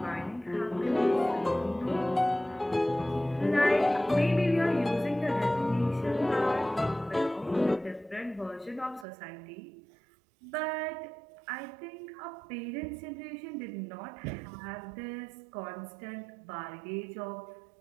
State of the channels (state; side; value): drops out; left; at 9.1 s